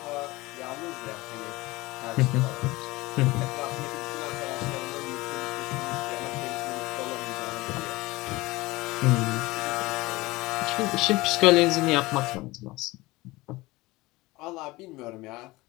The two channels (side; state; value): right; quieter; 20.7 dB